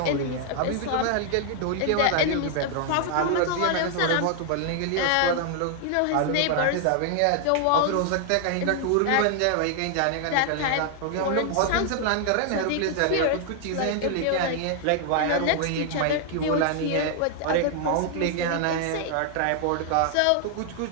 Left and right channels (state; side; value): different; both; correlation 0.00